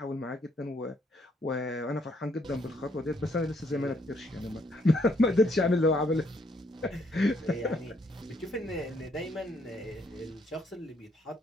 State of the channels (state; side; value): normal; both; correlation 0.70